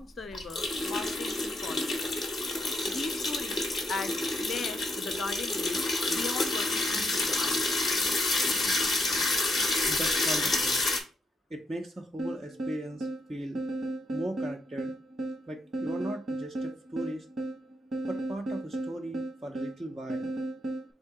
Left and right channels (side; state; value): both; normal; correlation 0.78